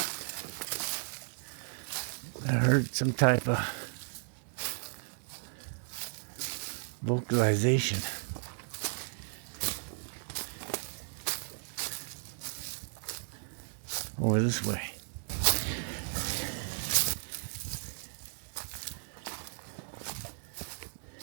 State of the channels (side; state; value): left; silent; digital silence